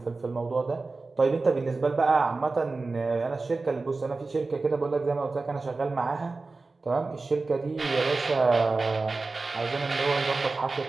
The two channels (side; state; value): left; quieter; 3.7 dB